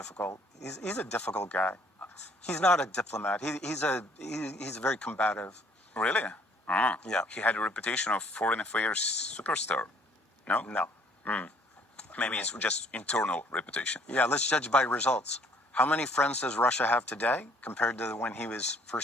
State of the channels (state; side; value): normal; both; correlation 0.61